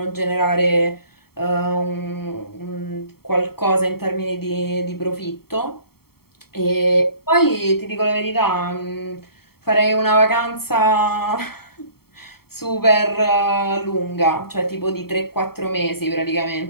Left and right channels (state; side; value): late; right; 0.95 ms